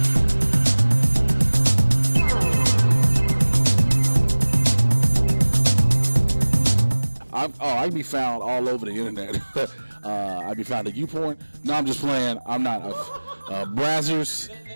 I can be found all over the internet. I be found at YouPorn. No, I'm just playing. I'm not. Brazzers.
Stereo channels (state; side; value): inverted; both; correlation -1.00